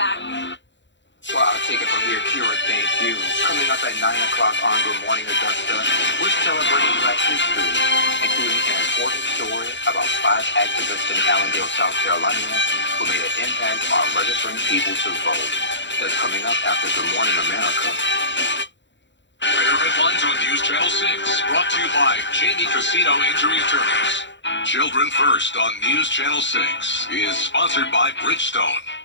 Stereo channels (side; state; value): right; late; 0.53 ms